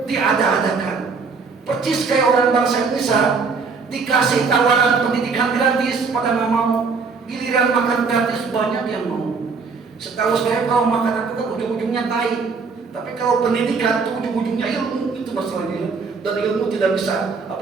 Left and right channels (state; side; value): quieter; left; 4.9 dB